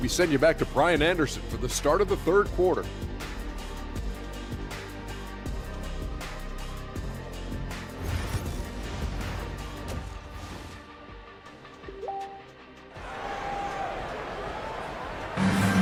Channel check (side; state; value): both; identical; correlation 1.00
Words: We send you back to Brian Anderson for the start of the third quarter.